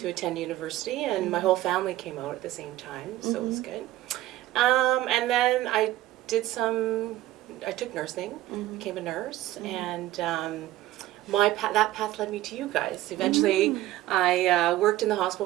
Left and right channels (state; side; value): quieter; left; 15.5 dB